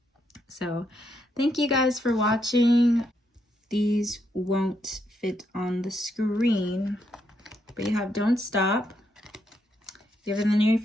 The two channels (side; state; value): both; normal; correlation 0.78